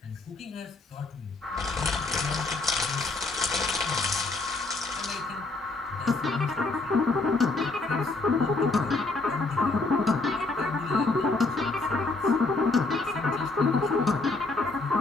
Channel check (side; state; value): right; quieter; 3.4 dB